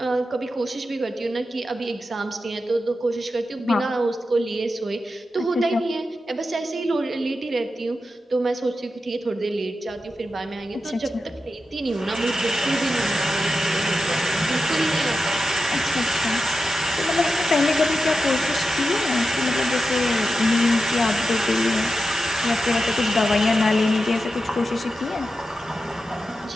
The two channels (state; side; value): normal; both; correlation 0.90